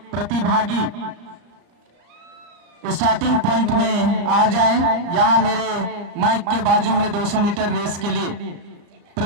प्रतिभागी स्टार्टिंग पॉइंट में आ जाएं। यहाँ मेरे माइक के बाजू में 200 मीटर रेस के लिए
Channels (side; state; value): left; late; 34 ms